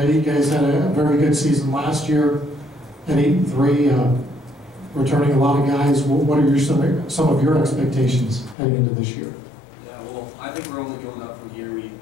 you guys had a very good season last year at 8-3, returning a lot of guys. What are some of your expectations heading into this year? Yeah, well, I think we're only going up from here. We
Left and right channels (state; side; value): drops out; right; at 8.6 s